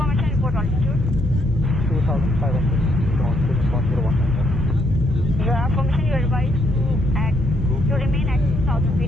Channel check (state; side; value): normal; both; correlation 0.73